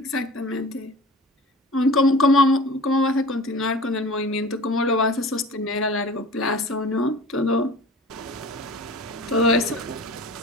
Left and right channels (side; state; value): both; normal; correlation 0.40